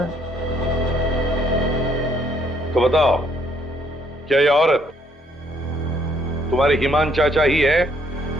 है। तो बताओ, क्या ये औरत तुम्हारे ईमान चाचा ही है?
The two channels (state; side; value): normal; both; correlation 0.68